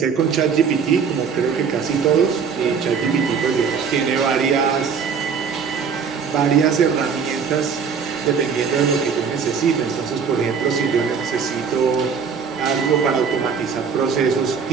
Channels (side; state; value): left; quieter; 6.2 dB